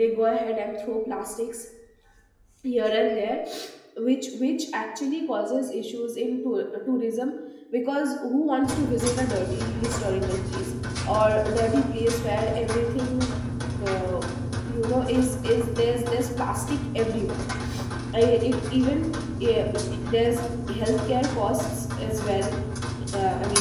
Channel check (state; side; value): identical; both; correlation 1.00